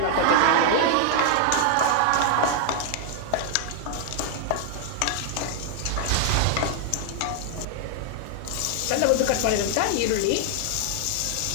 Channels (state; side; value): different; both; correlation 0.00